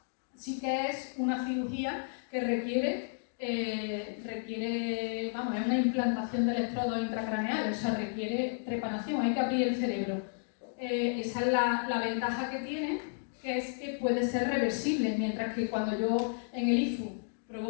sí que es una cirugía que requiere, es una implantación de electrodos intracraneales, o sea, requiere trepanación, hay que abrir el cerebro. Esa es la ventaja que tiene, que es que puede ser reversible, mientras que cuando yo en el IFU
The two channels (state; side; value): silent; right; digital silence